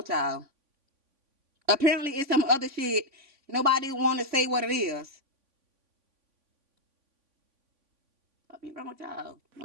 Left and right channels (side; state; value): left; late; 3.5 ms